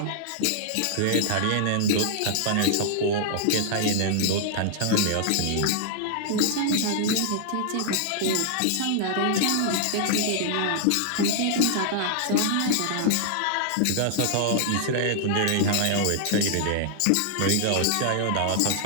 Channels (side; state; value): both; different; correlation -0.01